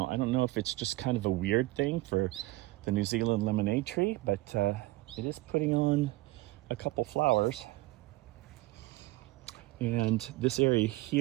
I don't know if it's just kind of a weird thing for the New Zealand lemonade tree, but it is putting on a couple flowers. And this area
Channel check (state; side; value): quieter; left; 19.8 dB